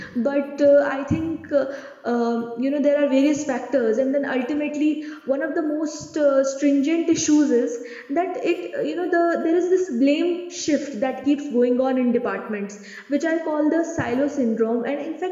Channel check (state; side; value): identical; both; correlation 1.00